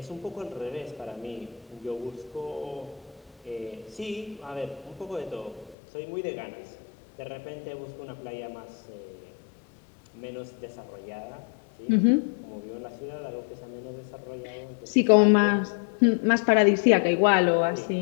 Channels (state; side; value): drops out; right; at 5.8 s